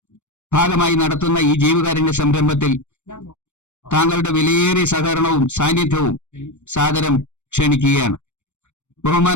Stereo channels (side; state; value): right; late; 0.84 ms